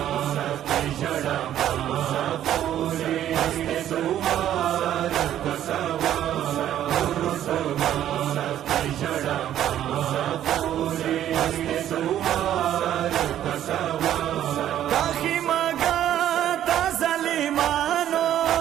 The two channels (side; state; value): left; quieter; 11.4 dB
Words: काखी मगा ताजलिमानो